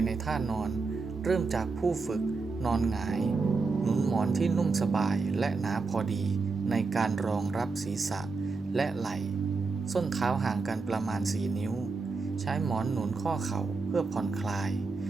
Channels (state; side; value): quieter; left; 4.2 dB